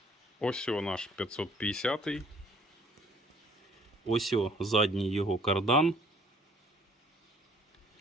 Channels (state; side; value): normal; both; correlation 0.58